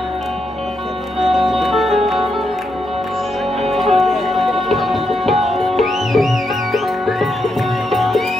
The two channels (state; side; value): normal; both; correlation 0.82